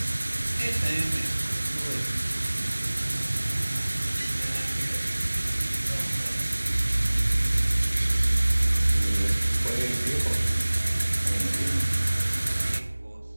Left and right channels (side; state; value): both; inverted; correlation -1.00